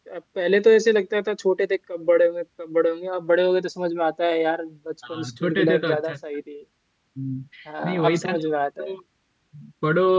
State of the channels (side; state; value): both; identical; correlation 1.00